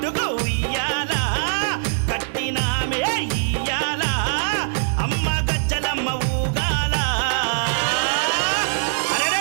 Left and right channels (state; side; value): silent; left; 64 dB below the other